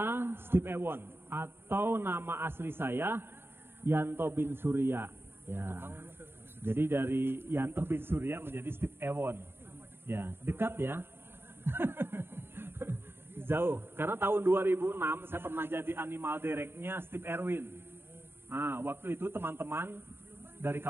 Steve Ewon atau nama asli saya Yanto bin Surya. Ya. Jadi dari Yanto bin Surya menjadi Steve Ewon. Ya, dekat ya. Jauh. Karena tahun 2006 saya pernah jadi animal directnya Steve Erwin. Nah, waktu itu teman-teman dari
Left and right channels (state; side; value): late; left; 0.11 ms